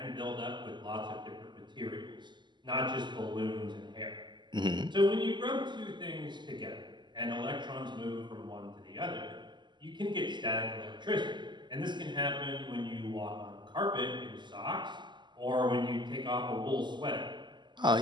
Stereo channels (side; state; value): left; late; 0.22 ms